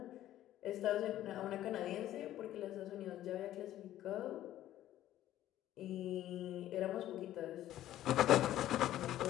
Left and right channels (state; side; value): quieter; right; 13.1 dB